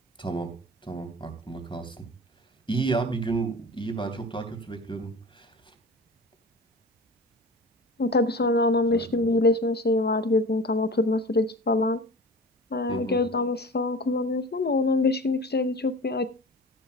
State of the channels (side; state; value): both; normal; correlation 0.37